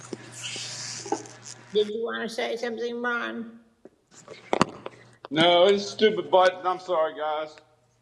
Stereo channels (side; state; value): both; identical; correlation 1.00